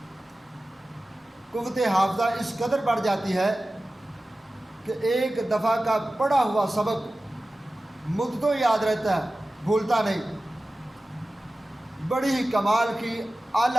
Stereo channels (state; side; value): normal; both; correlation 0.96